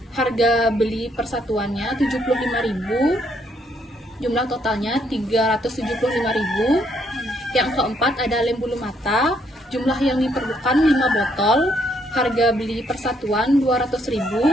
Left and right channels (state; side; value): normal; both; correlation 0.71